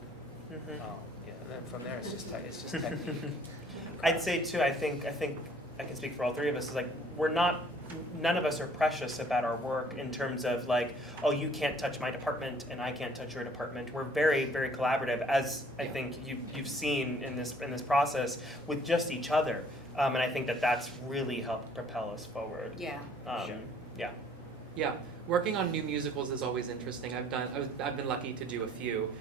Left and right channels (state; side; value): normal; both; correlation 0.58